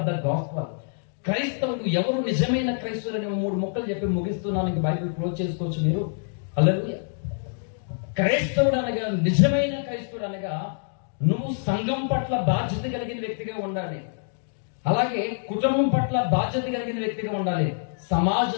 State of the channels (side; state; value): right; silent; digital silence